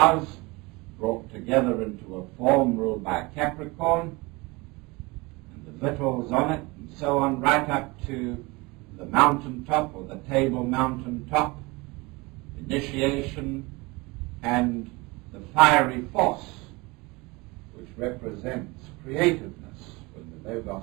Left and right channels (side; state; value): left; quieter; 24.5 dB